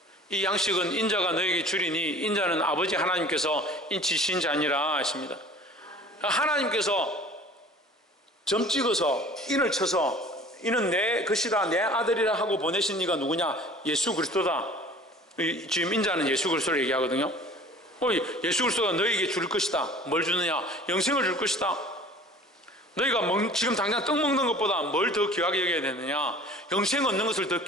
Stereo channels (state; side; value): normal; both; correlation 0.46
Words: 이 양식은 인자가 너에게 주리니 인자는 아버지 하나님께서 인치신 자니라 하십니다. 하나님께서 점 찍어서 인을 쳐서 이는 내 것이다, 내 아들이라 하고 보내신 이가 누구냐? 예수 그리스도다. 지금 인자는 예수 그리스도를 얘기하거든요. 예수 그리스도가 너에게 줄 것이다. 뭘 주느냐? 영생을 줄 것이다. 너희가 지금 당장 떡 먹는 것보다 뭘 더 귀하게 여겨야 되느냐? 영생 얻는 것을 더